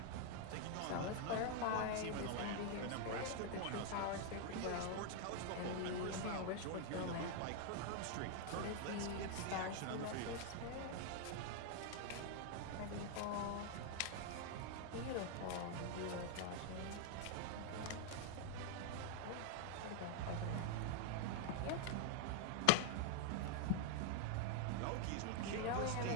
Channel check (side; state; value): both; different; correlation 0.00